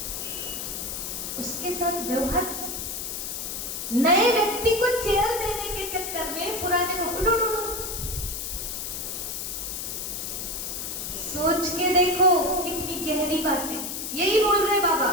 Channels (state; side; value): noise; left; hiss, 5 dB below the sound